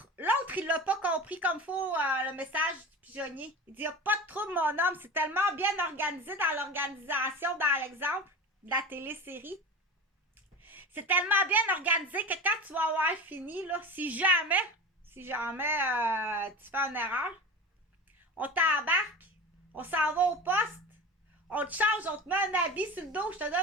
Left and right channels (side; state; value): both; normal; correlation 0.30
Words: il l'a pas compris comme faut le message du pigeonnier. Il dit, il n'y a pas de trouble, mon homme. C'est tellement bien organisé dans l'organisation, dans l'exemple de la télésérie. C'est tellement bien organisé que quand tu vas avoir fini, là, si jamais tu fais une erreur, on t'embarque, on s'en va au poste, on te change, on te met un habit sur le dos, je te